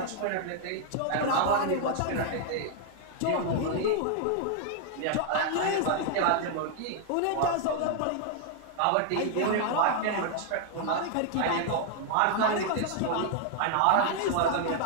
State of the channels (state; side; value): different; both; correlation 0.00